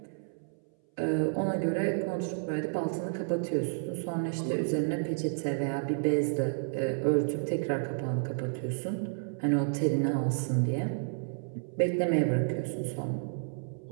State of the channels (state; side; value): silent; left; 57 dB below the other